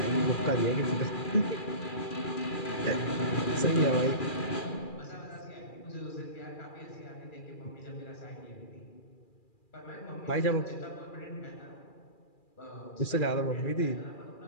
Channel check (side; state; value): right; late; 2.4 ms